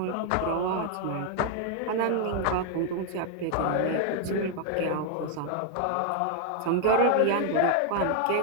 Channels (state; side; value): different; both; correlation 0.00